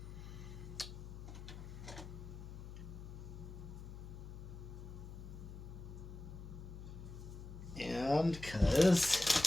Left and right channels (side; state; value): left; noise; hum, 11 dB below the sound